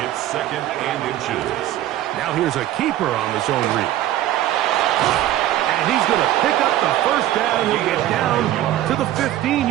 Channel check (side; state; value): left; quieter; 13.5 dB